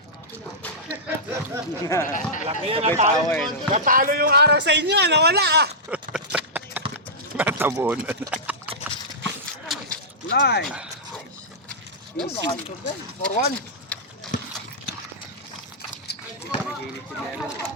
Natalo yung araw sa inyo, nawala ah. Natabunan. Line! Easy. For one.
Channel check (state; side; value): normal; both; correlation -0.13